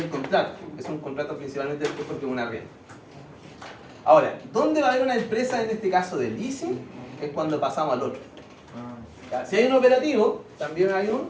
contrato, es un contrato principalmente porque es una arriendo. Ahora, ¿dónde va a haber una empresa en este caso de leasing? Es cuando pasamos al otro. ¿Ya? Si hay un operativo, también hay un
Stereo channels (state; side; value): identical; both; correlation 1.00